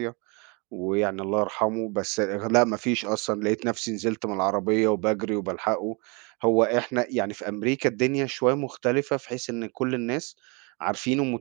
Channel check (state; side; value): quieter; left; 30.9 dB